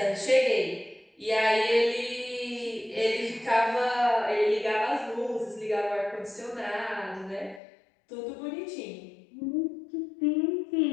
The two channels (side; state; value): right; drops out; at 7.6 s